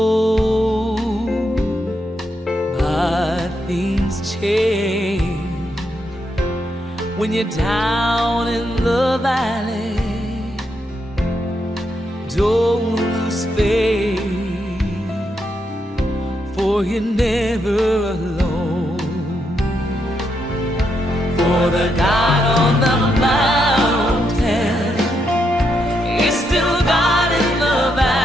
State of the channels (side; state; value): both; normal; correlation 0.80